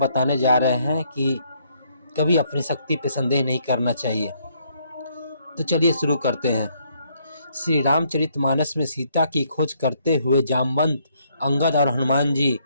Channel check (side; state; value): both; inverted; correlation -0.70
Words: जा रहे हैं कि कभी अपनी शक्ति पर संदेह नहीं करना चाहिए। तो चलिए शुरू करते हैं। श्री रामचरितमानस में सीता की खोज करते हुए जामवंत, अंगद और हनुमान जी